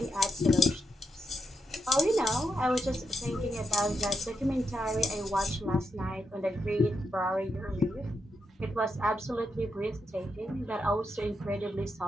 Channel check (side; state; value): both; normal; correlation 0.83